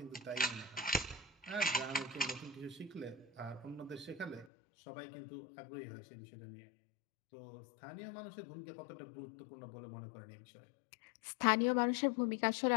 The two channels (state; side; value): drops out; right; at 4.5 s